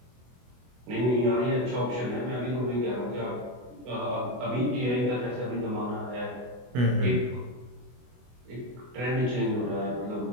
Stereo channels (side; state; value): left; late; 24 ms